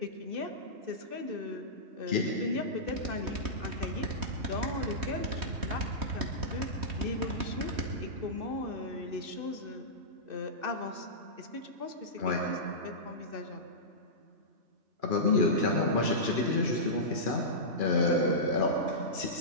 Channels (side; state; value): left; late; 3.1 ms